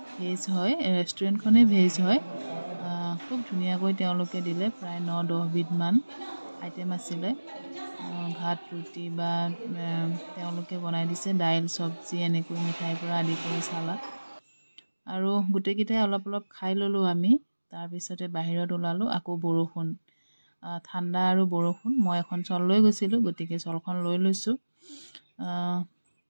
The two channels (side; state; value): both; inverted; correlation -1.00